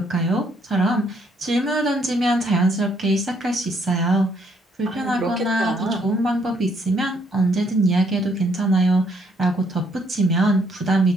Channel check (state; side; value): normal; both; correlation 0.69